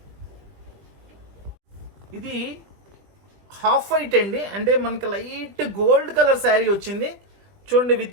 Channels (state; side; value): late; left; 20 ms